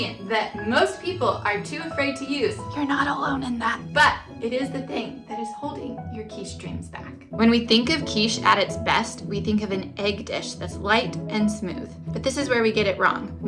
that most people are too afraid to use. You're not alone in that. But it is the thing that is holding your quiche dreams back. When we think of quiche at its best, we think of an egg dish that's light and smooth. But this is where we get it wrong.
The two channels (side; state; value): both; identical; correlation 1.00